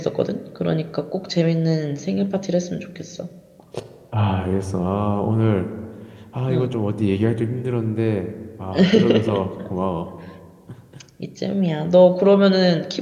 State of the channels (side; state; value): both; identical; correlation 1.00